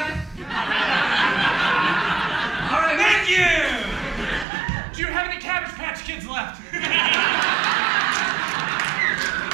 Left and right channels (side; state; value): left; drops out; at 4.5 s